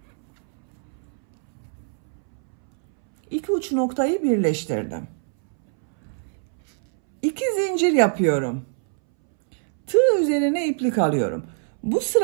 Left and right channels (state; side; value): silent; left; 63 dB below the other